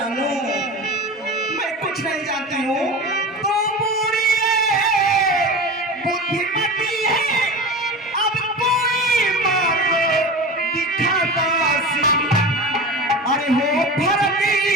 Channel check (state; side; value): normal; both; correlation 0.30